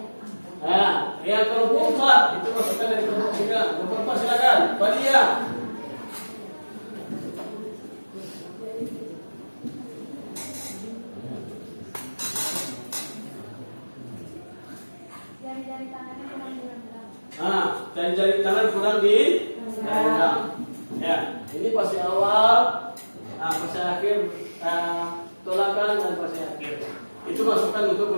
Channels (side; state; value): both; inverted; correlation -1.00